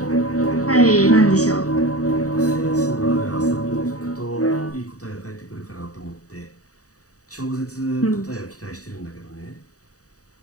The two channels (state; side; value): late; right; 0.66 ms